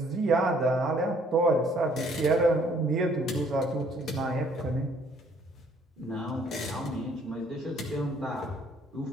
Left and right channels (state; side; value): normal; both; correlation 0.62